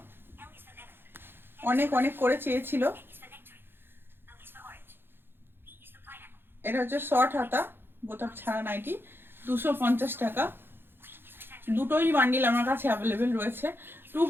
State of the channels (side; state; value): left; late; 0.10 ms